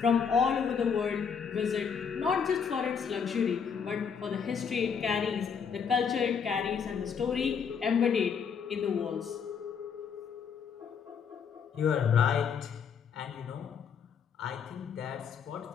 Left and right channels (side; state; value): right; quieter; 6.7 dB